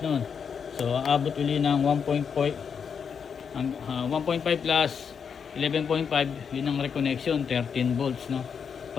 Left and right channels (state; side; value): quieter; right; 6.7 dB